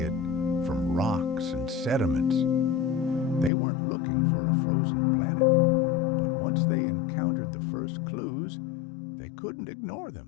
from rocks and sediments. They weren't looking for a frozen planet, but once they encountered the first clues, they couldn't ignore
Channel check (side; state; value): right; drops out; at 3.5 s